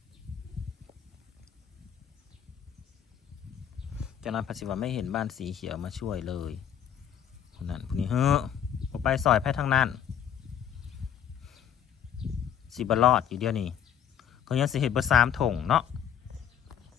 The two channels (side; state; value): right; quieter; 9.1 dB